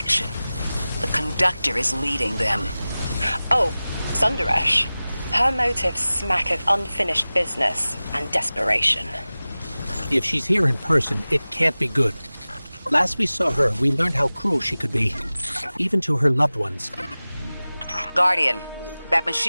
The Conductor is leading them. Oh, Sundaresh. Her motives smack of unfinished business and desperation. If she's here in person, it can't be good. Last we saw her, we learned how cruel she could be, even to her loved ones. Guardian, that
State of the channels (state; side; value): inverted; both; correlation -0.97